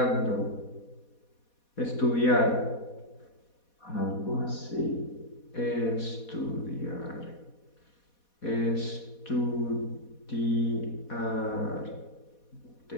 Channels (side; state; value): right; late; 4.2 ms